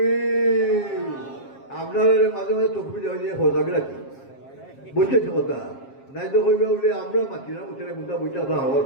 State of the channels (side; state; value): right; late; 7.4 ms